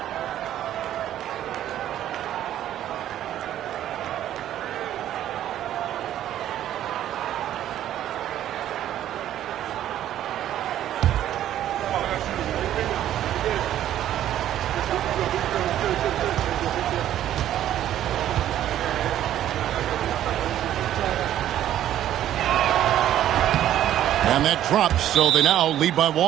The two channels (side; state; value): left; quieter; 11.8 dB